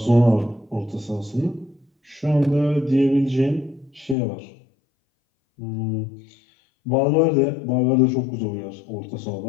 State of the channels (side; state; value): right; drops out; at 4.2 s